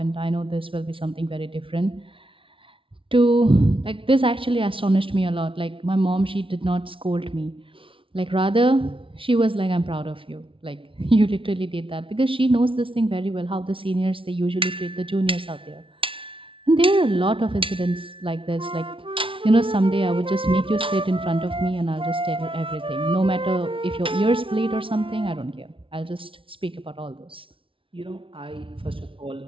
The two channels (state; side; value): late; left; 0.25 ms